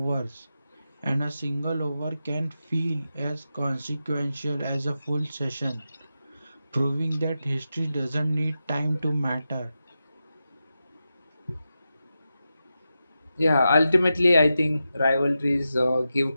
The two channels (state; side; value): inverted; both; correlation -0.90